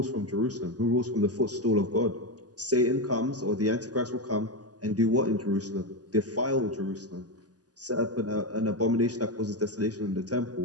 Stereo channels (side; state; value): left; late; 0.68 ms